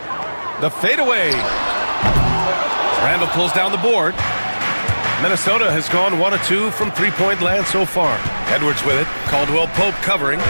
The fadeaway. Randle pulls down the board. Minnesota has gone 1 of 2 from three-point land so far. Edwards with it. Caldwell-Pope covering.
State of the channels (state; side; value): inverted; both; correlation -1.00